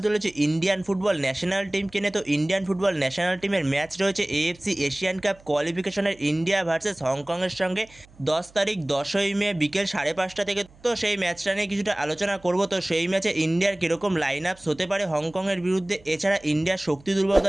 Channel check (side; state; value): right; noise; hum, 26 dB below the sound